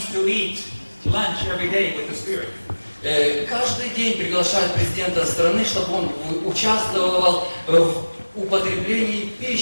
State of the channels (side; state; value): both; inverted; correlation -1.00